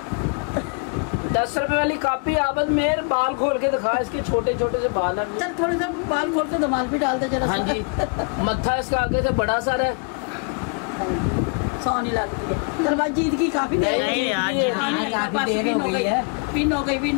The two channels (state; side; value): quieter; right; 37.6 dB